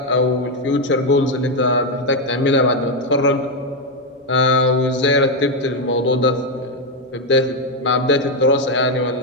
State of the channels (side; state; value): both; normal; correlation 0.04